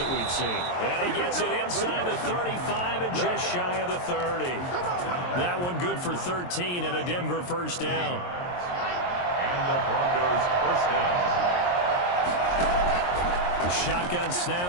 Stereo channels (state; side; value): late; right; 23 ms